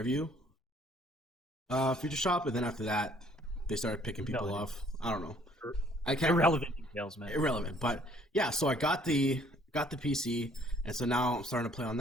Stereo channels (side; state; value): both; normal; correlation 0.61